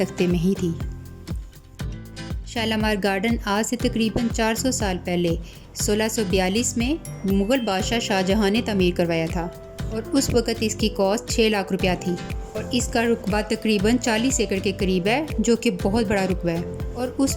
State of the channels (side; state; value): both; identical; correlation 1.00